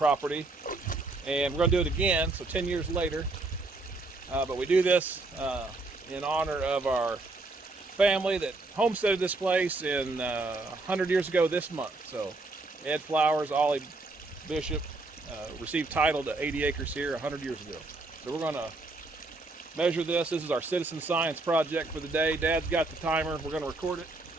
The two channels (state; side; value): quieter; left; 3.2 dB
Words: and we're going to do it again, so 10 years later. But we do this in honor of our family that homesteaded this place in 100 years ago this month. So Ed Flowers, Ollie Bishop received title to 80 acres here 100 years ago. So we're going to measure this. This is our citizen science project for the day. Dad's got the timer. We're going to record it.